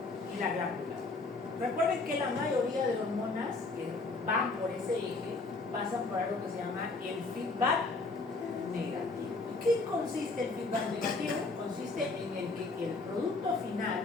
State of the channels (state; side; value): quieter; right; 3.6 dB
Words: y la glándula. Recuerden que la mayoría de hormonas que van por ese eje pasan por algo que se llama el feedback negativo. ¿Qué consiste el feedback negativo? Consiste en el que el producto